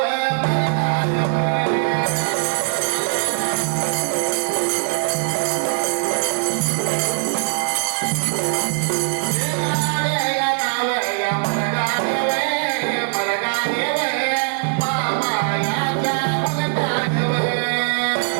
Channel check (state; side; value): silent; left; digital silence